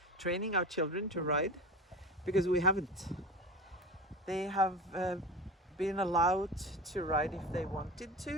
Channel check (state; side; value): normal; both; correlation 0.31